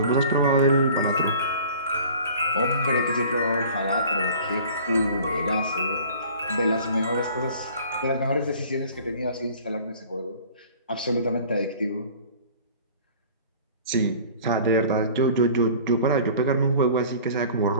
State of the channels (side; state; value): both; inverted; correlation -0.46